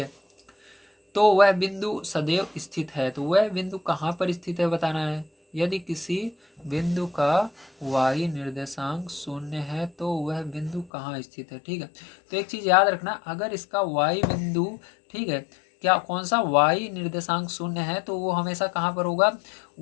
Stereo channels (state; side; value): drops out; right; at 10.9 s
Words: तो वह बिंदु सदैव स्थित है, तो वह बिंदु कहाँ पर स्थित है बताना है। यदि किसी बिंदु का y निर्देशांक 0 है तो वह बिंदु कहाँ स्थित है, ठीक है। तो एक चीज याद रखना, अगर इसका y बिंदु, ठीक है, क्या कौन सा y निर्देशांक 0 है तो वो हमेशा कहाँ पर होगा?